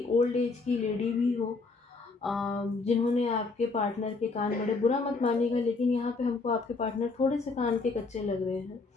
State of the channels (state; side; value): quieter; right; 3.9 dB